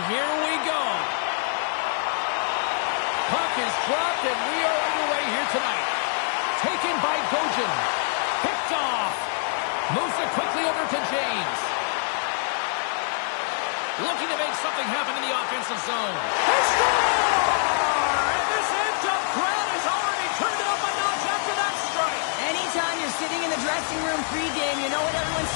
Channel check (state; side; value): silent; right; digital silence